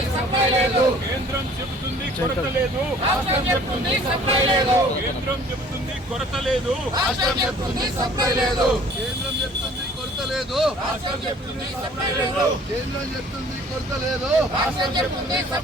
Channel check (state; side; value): normal; both; correlation 0.52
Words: సప్లై లేదు. కేంద్రం చెబుతుంది కొరత లేదు, రాష్ట్రం చెప్తుంది సప్లై లేదు. కేంద్రం చెబుతుంది కొరత లేదు, రాష్ట్రం చెప్తుంది సప్లై లేదు. కేంద్రం చెప్తుంది కొరత లేదు, రాష్ట్రం చెప్తుంది సప్లై లేదు. కేంద్రం చెప్తుంది కొరత లేదు, రాష్ట్రం చెప్తుంది